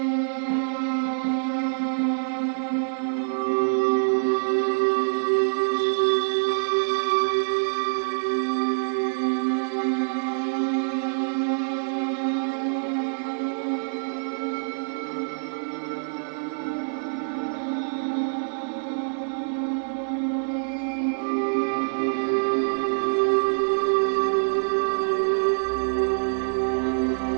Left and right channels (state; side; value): silent; left; digital silence